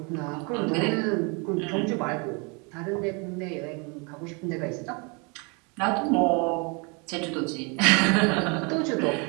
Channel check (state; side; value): quieter; left; 32.2 dB